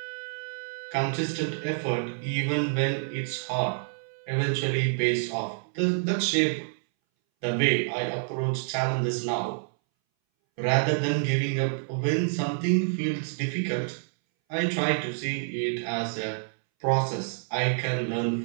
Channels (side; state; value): left; silent; 59 dB below the other